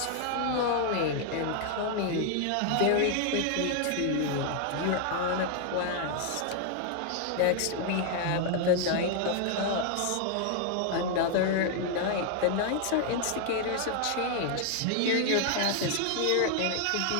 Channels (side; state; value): both; different; correlation 0.00